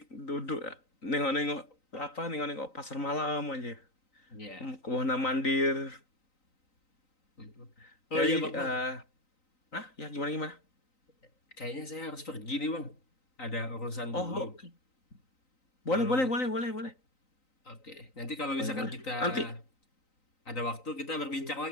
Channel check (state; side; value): late; right; 3.9 ms